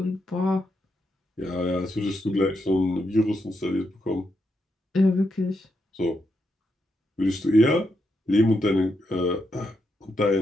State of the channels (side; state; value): both; normal; correlation 0.82